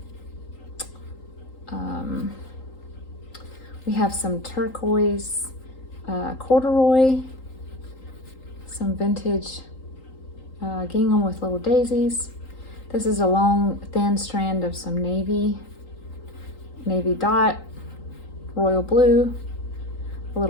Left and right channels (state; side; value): late; right; 3.8 ms